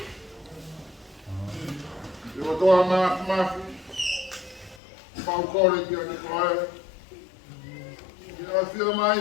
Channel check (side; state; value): right; drops out; at 4.8 s